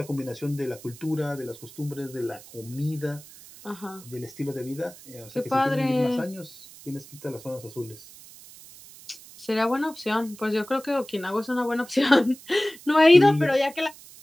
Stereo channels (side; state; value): right; noise; hiss, 19 dB below the sound